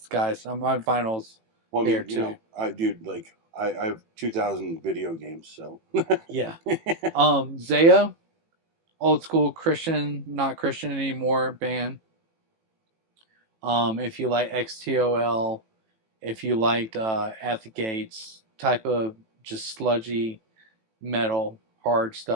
guys. My vinyls here too. I have 2,000 video games, so yeah. Zao, old school Christian, not Christian anymore band. If you like XTOL, if you liked At the Gates type of just sludgy metal, hard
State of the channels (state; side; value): late; left; 18 ms